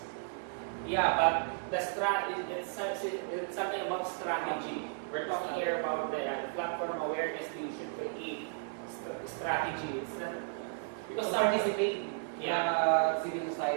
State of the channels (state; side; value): silent; left; 55 dB below the other